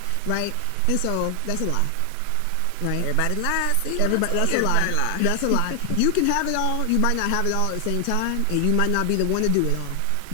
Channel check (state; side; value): different; both; correlation 0.00